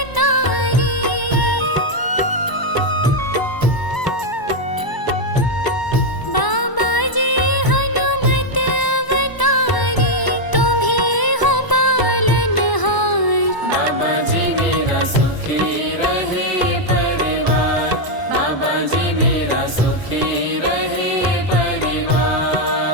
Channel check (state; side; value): late; right; 1.0 ms